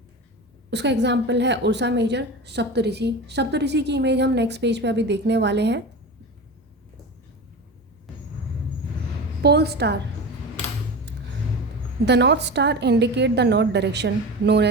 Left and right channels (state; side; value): normal; both; correlation 0.28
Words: उसका एग्जाम्पल है उर्सा मेजर, सप्तऋषि। सप्तऋषि की इमेज हम नेक्स्ट पेज पे अभी देखने वाले हैं। Pole star, the north star indicate the north direction known